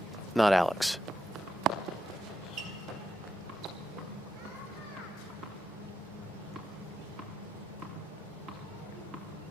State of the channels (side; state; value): both; normal; correlation 0.83